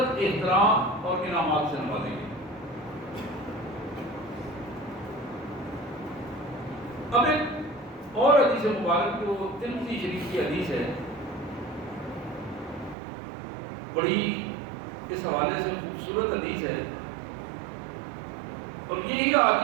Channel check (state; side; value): drops out; left; at 13.0 s